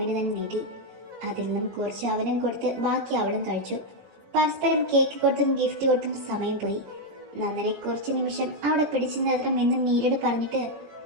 തന്നെ നീട്ടി. അതിൽ നിന്നും കുറച്ച് അവനും കൊടുത്ത് ബാക്കി അവളും കഴിച്ചു. പരസ്പരം കേക്ക് കൊടുത്തും ഗിഫ്റ്റ് കൊടുത്തും സമയം പോയി. നന്ദനെ കുറച്ച് നിമിഷം അവിടെ പിടിച്ചു നിർത്തണം എന്ന് നീരട് പറഞ്ഞിട്ട്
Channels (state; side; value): late; left; 17 ms